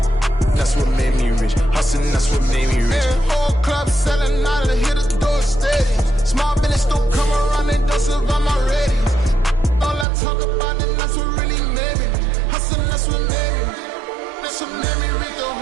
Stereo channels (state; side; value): drops out; left; at 10.1 s